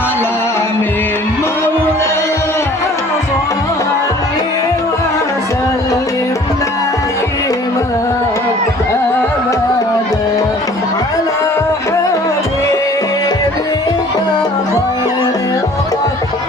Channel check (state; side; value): normal; both; correlation 0.51